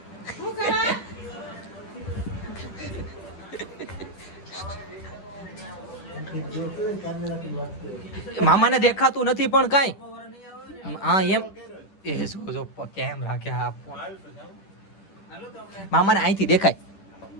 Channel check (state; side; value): late; right; 10 ms